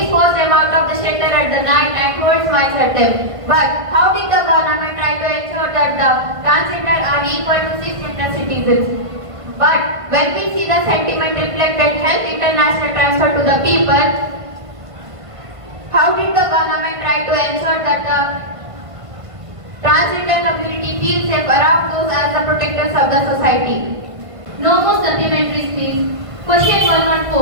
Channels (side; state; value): left; late; 1.5 ms